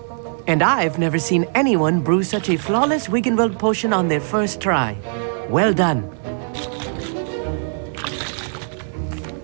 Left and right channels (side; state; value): left; silent; digital silence